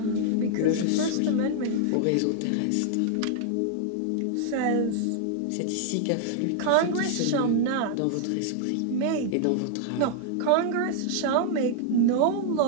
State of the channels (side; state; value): both; different; correlation 0.00